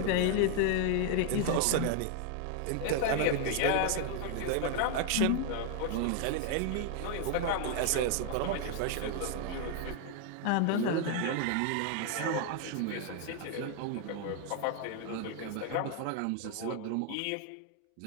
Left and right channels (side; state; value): both; different; correlation 0.00